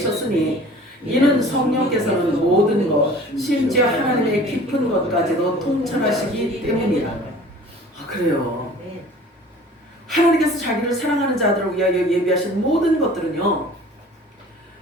이는 성령께서는 모든 것 심지어 하나님의 깊은 것까지도 통찰하시기 때문이라. 그래요. 하나님께서 자기를 사랑하는 자들을 위하여 예비하신 모든 것들은요,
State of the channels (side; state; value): both; normal; correlation 0.46